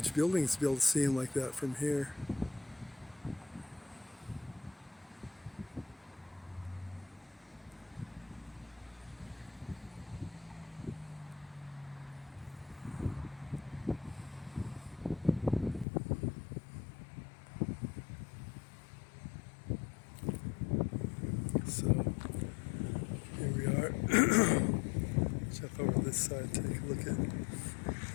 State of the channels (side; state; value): right; drops out; at 15.9 s